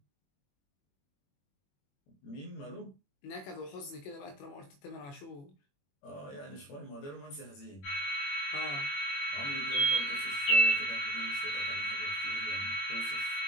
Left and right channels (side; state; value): right; late; 21 ms